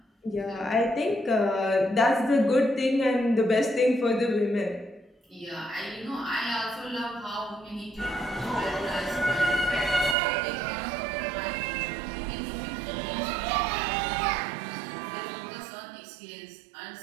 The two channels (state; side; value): drops out; left; at 10.2 s